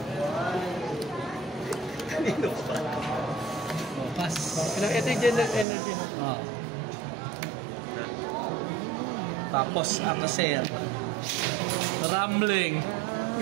Kanino pa? Oh, pas. Ito yung general energy no? Oh. Tapos, after sale. Rambling.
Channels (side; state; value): left; drops out; at 5.7 s